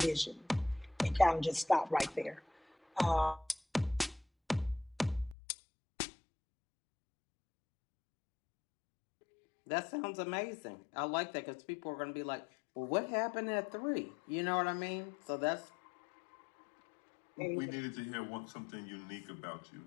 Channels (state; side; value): drops out; right; at 5.4 s